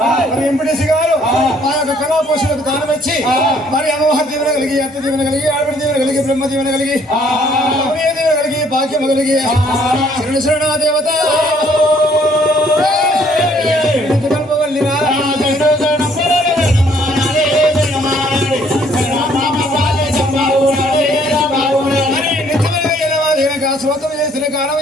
మరి ఎంపీటీసీ గారు మా యొక్క కళా పోషణకు దానం ఇచ్చి మరి అమ్మవారి దీవెన కలిగి అత్త దీవెన కలిగి ఆడపడి దీవెన కలిగి బ్రహ్మ దీవెన కలిగి అమ్మయ్య దీవెన కలిగి భాగ్యం కలిగి శరణ శరణ దేవత కల్పవల్లిరా స్వతం చేసిన కాలం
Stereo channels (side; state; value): both; normal; correlation 0.63